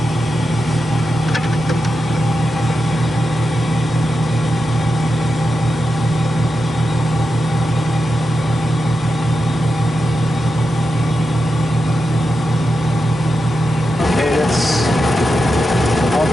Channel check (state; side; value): normal; both; correlation 0.88